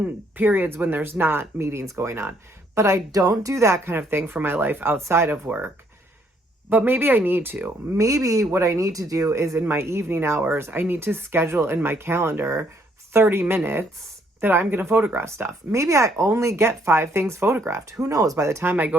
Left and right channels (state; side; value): normal; both; correlation 0.68